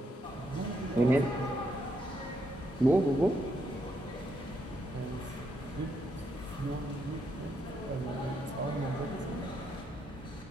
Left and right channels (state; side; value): normal; both; correlation 0.77